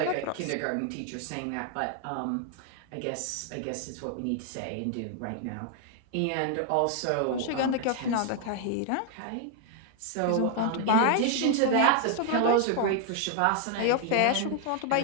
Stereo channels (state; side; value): different; both; correlation 0.00